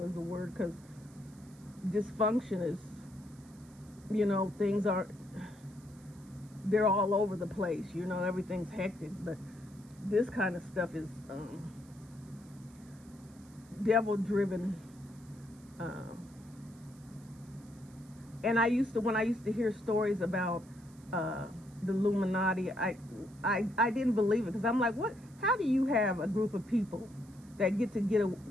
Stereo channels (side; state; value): right; noise; hiss, 27 dB below the sound